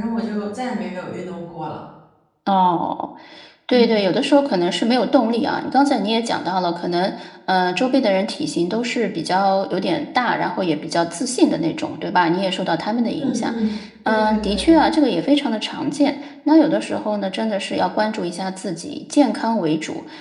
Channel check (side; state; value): both; identical; correlation 1.00